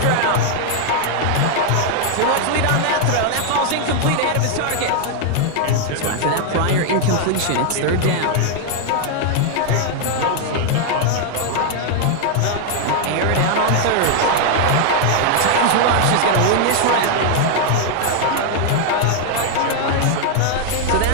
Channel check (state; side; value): different; both; correlation 0.00